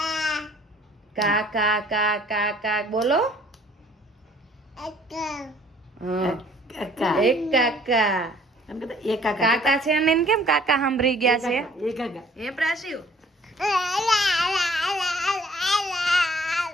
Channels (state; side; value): normal; both; correlation 0.57